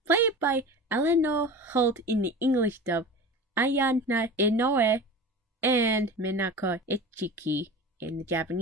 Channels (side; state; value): both; normal; correlation 0.34